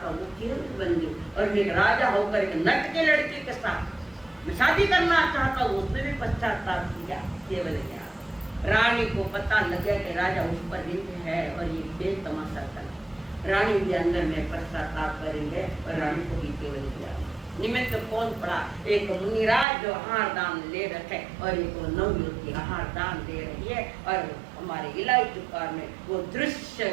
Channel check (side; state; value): left; drops out; at 19.7 s